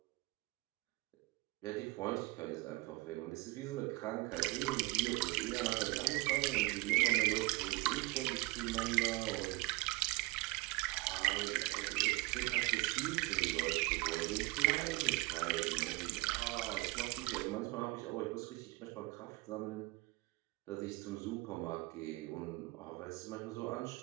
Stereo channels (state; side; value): quieter; left; 22.5 dB